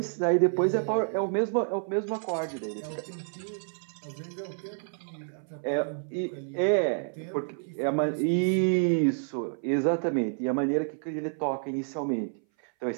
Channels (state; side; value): silent; left; 58 dB below the other